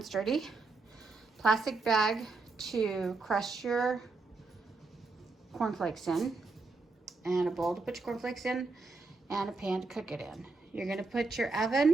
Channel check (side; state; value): left; quieter; 3.8 dB